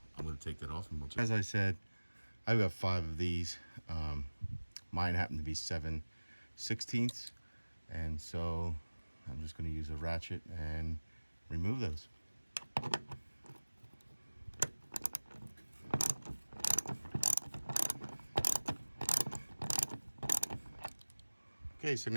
I'm going to take that off, and as I said, I've got 5 of these. Mine happen to be 7/16, and so I'm just going to use a ratchet and remove those. Okay, so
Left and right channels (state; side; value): inverted; both; correlation -1.00